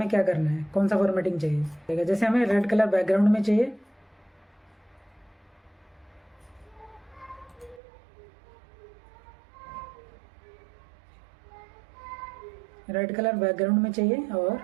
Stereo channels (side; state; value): left; drops out; at 7.8 s